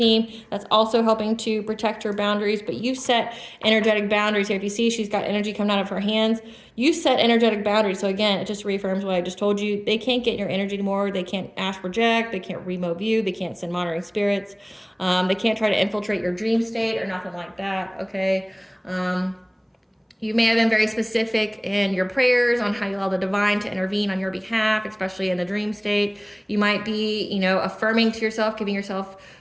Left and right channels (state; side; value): identical; both; correlation 1.00